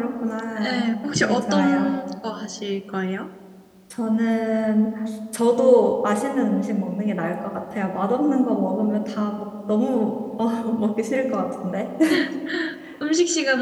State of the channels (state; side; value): identical; both; correlation 1.00